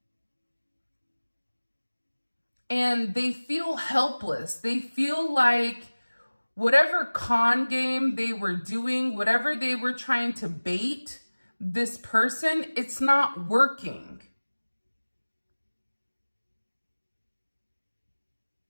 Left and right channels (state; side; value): inverted; both; correlation -1.00